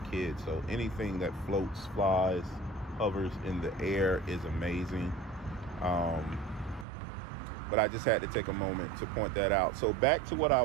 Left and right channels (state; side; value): drops out; left; at 6.9 s